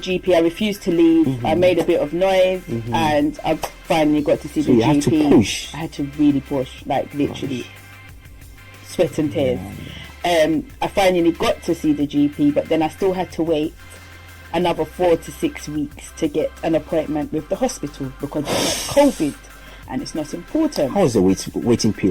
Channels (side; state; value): both; identical; correlation 1.00